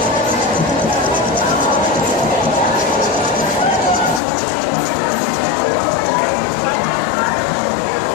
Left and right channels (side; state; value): right; drops out; at 4.2 s